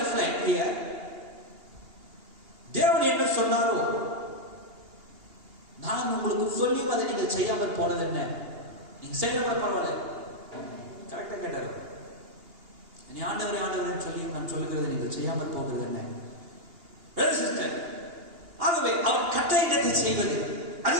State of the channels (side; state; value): left; late; 2.8 ms